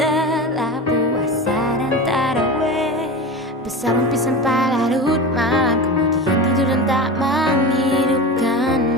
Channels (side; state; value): both; normal; correlation 0.28